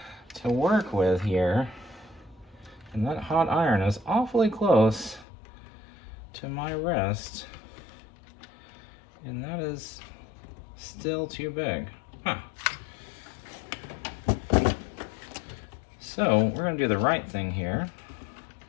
to work with here. And that hot iron is awfully close to my wrist. And that is still too big. Huh. So we're gonna do the right thing here.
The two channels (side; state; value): right; drops out; at 5.2 s